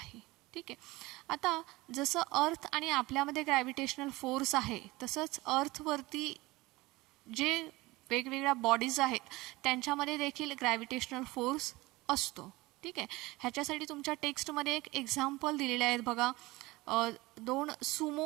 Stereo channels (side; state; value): left; quieter; 20.8 dB